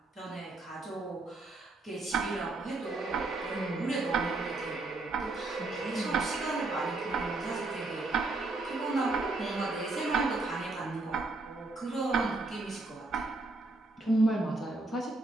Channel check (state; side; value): quieter; left; 3.1 dB